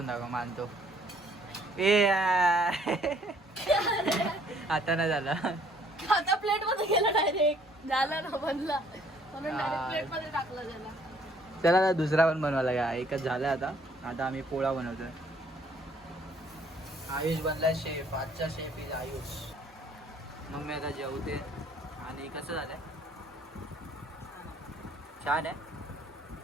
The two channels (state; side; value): normal; both; correlation 0.61